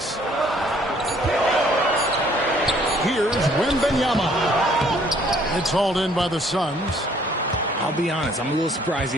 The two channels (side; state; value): both; normal; correlation 0.61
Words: Here's Wembanyama. It's hauled in by the Suns. I'll be honest, I'm a little surprised